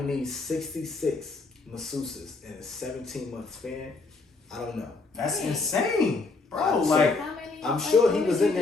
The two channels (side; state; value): right; quieter; 3.8 dB